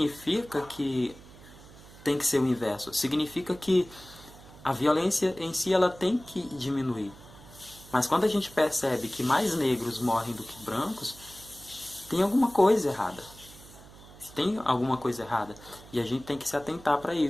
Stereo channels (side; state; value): right; noise; hum, 20 dB below the sound